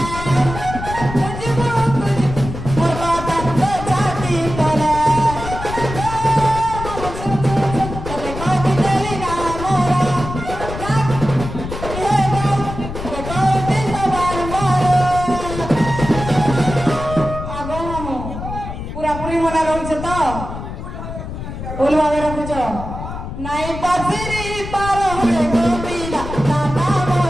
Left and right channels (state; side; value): noise; left; rumble, 8 dB below the sound